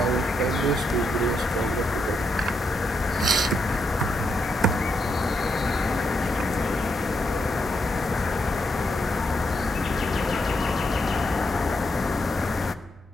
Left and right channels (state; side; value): normal; both; correlation 0.81